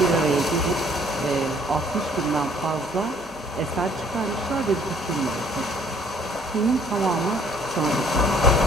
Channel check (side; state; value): both; normal; correlation 0.60